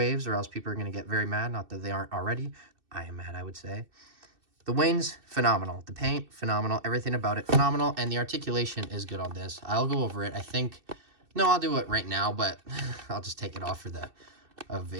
or else people are going to get very mad. Not that they aren't already. I am mad, I would say. The wings, phenomenal. The paint, phenomenal. Everything about it, phenomenal. And the articulation is good on this. I'll go over it. I think... No, I'll do it right now, but I'll just take it off for the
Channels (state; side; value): late; left; 2.6 ms